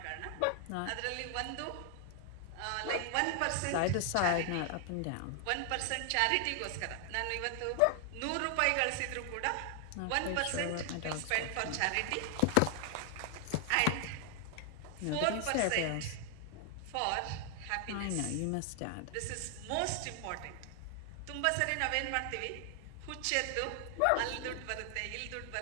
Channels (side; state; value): both; different; correlation 0.00